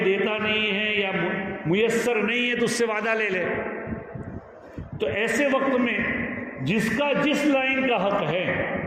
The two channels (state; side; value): identical; both; correlation 1.00